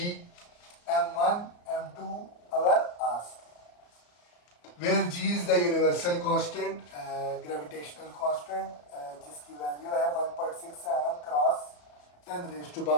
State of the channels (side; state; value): right; late; 34 ms